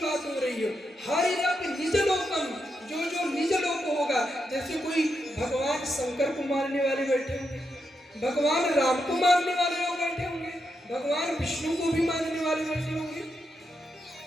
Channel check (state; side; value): normal; both; correlation 0.84